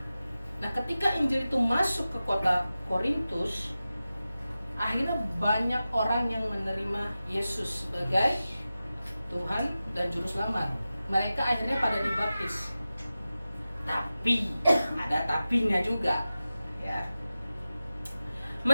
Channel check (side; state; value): both; inverted; correlation -0.94